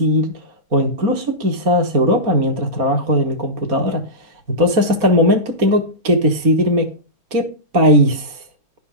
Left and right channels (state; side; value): late; left; 4.2 ms